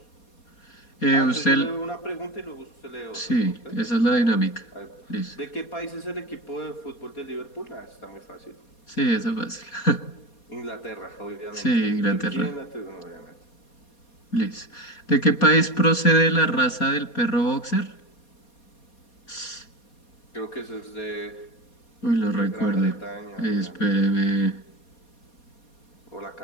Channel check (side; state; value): right; late; 4.2 ms